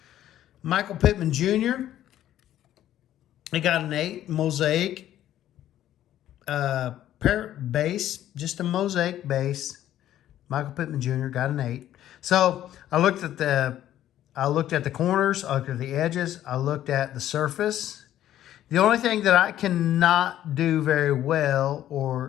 Michael Pittman Jr. It got an 8. Mosaic. Base. Just a mosaic base. Michael Pittman Jr. got an 8. So I looked at the corners, I looked at the edges, I looked at the surface. The only thing that I cannot do very well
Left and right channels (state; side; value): quieter; right; 12.3 dB